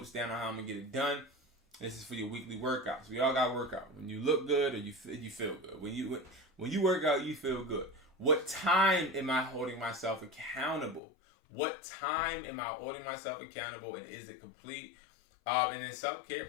down on how I'm going to get it done. This is for your weekly workouts. We all got to work out. When you look good or you feel good. When you work out, you feel good. What time am I holding myself accountable? What time am I holding myself accountable, and is it complete? And then self-care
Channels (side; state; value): right; drops out; at 11.0 s